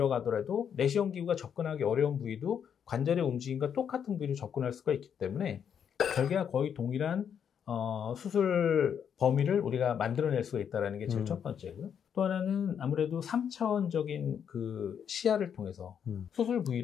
내시경 기구가 접근하기 어려운 부위도 관절의 움직임과 똑같은 부위로 접근할 수가 있기 때문에 절개와 거의 동일한 수술 범위를 우리가 만들어낼 수가 있다는 게 제일 첫 번째고요. 또 하나는 아무래도 3차원적인 그 시야를 통해서 수술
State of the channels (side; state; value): right; quieter; 8.0 dB